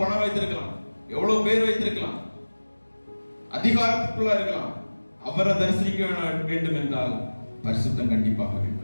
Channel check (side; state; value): both; inverted; correlation -1.00